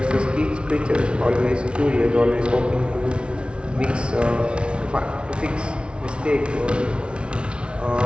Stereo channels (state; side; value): late; left; 0.058 ms